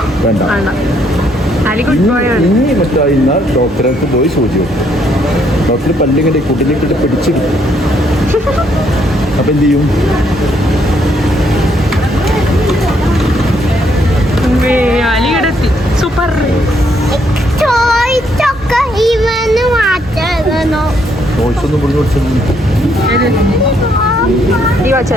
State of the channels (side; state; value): both; normal; correlation 0.71